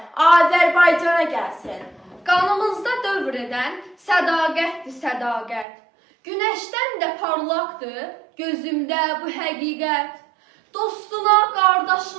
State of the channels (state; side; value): drops out; left; at 5.7 s